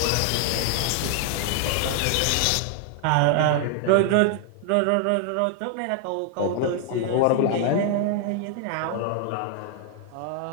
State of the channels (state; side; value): different; both; correlation 0.00